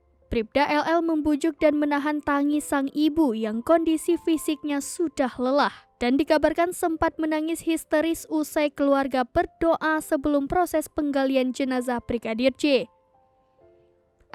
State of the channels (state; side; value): identical; both; correlation 1.00